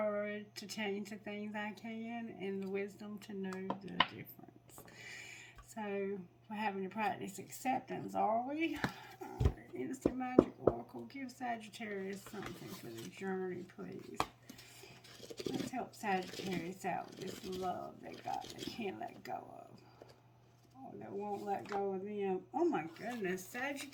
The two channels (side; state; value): both; identical; correlation 1.00